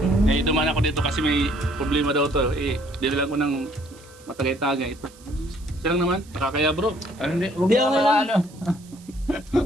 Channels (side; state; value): right; noise; hiss, 25 dB below the sound